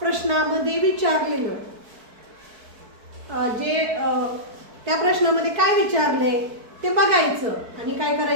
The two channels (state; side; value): late; left; 4.6 ms